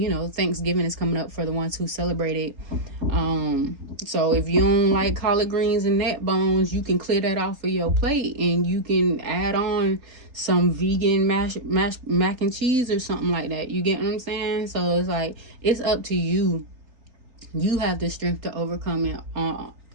know, Thanksgiving is coming up for the ones who celebrate it. So if you don't like collard greens and neck bones, you can clear that off of your plate, and you can add on some vegan mac and cheese or something like that. You get what I'm saying? So it's like, it's up to you. You have the strength to overcome it,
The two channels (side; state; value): left; late; 3.8 ms